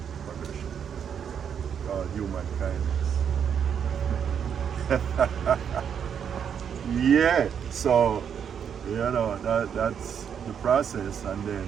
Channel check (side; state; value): left; quieter; 7.9 dB